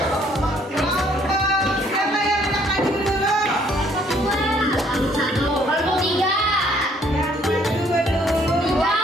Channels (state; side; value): normal; both; correlation 0.63